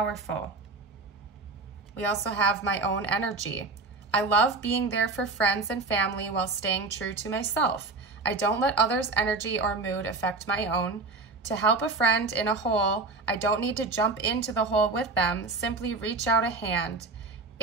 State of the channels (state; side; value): quieter; left; 3.7 dB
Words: We also have my own energy. I love being there for friends and family while staying true to myself. I don't let others' energy or mood affect my own. To help a friend in a hole, I don't need to jump into the hole with them, simply reach out a hand.